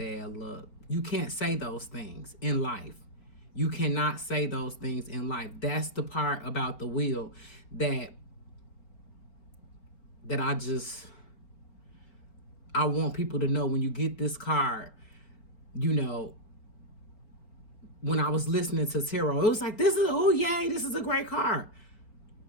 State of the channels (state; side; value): late; right; 4.4 ms